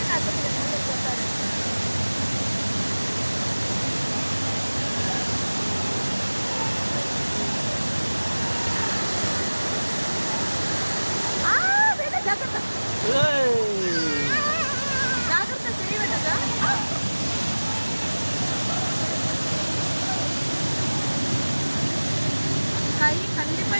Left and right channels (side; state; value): both; inverted; correlation -1.00